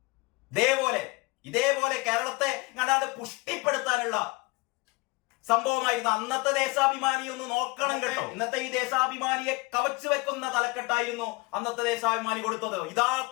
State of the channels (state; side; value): quieter; right; 25.5 dB